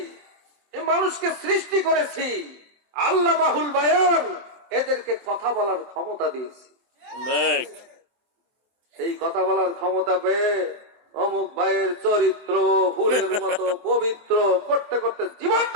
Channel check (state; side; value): late; left; 24 ms